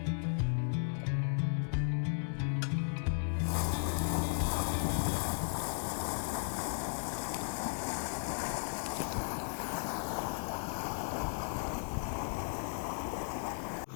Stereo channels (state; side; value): silent; right; digital silence